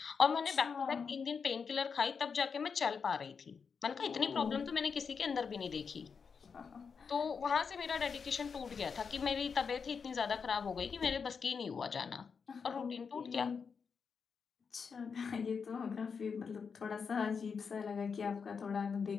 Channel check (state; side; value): quieter; right; 5.8 dB